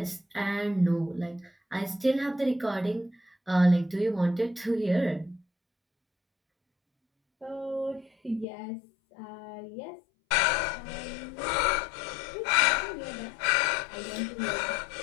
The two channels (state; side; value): drops out; right; at 8.5 s